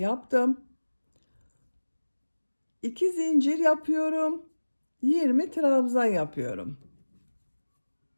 2 zincir yapıyorum. 20 trabzan yapıyorum.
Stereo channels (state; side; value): inverted; both; correlation -1.00